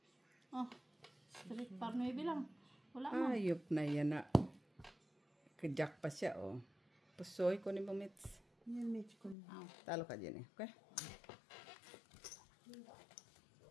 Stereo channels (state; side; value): drops out; right; at 9.3 s